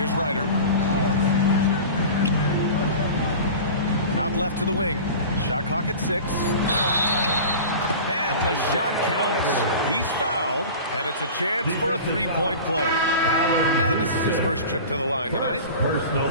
Ryder. Out left to the wing. Shot clock at 6. And the shot counts. He's fouled, and it's a chance for a 3-point play. And this is his first trip to the line tonight. Personal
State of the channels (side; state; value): both; inverted; correlation -0.35